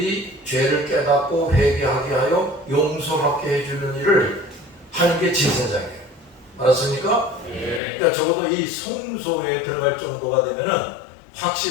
죄를 깨닫고 회개하게 하여 용서받게 해주는 일을 하는 게 제사장이에요. 알았습니까? 네. 그러니까 적어도 이 성소에 들어갈 정도가 되면은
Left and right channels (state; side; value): drops out; right; at 7.8 s